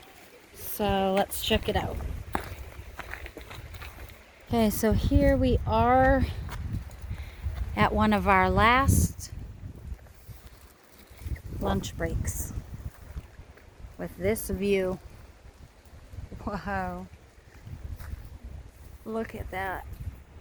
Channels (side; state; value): both; identical; correlation 1.00